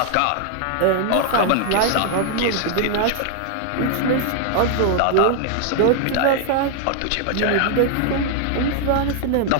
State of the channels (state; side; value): different; both; correlation 0.00